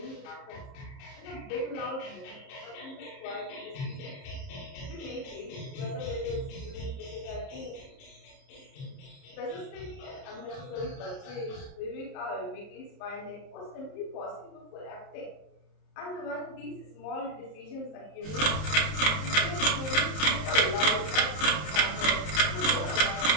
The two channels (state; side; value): late; right; 30 ms